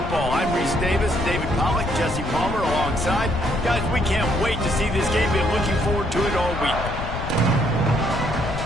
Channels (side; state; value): left; noise; rumble, 6 dB below the sound